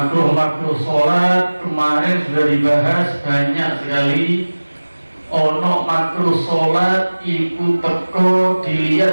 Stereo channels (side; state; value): both; inverted; correlation -1.00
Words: sholat kemarin sudah dibahas banyak sekali. Ono makruh sholat iku teko